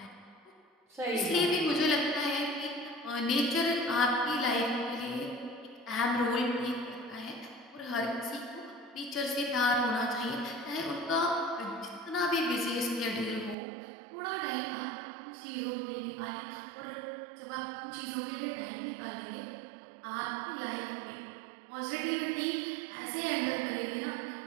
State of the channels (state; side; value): drops out; left; at 13.6 s